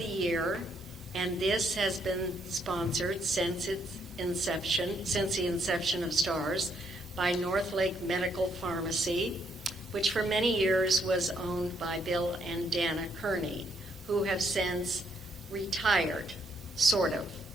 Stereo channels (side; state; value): both; normal; correlation 0.73